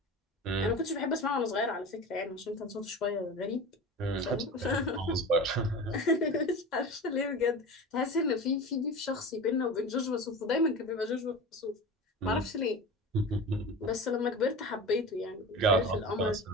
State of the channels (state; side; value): normal; both; correlation 0.32